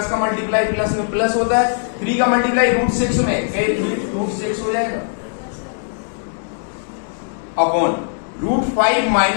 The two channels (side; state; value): right; silent; digital silence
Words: का मल्टीप्लाई प्लस में प्लस होता है। 3 का मल्टीप्लाई √6 में, 3√6 हो जाएगा अपॉन √5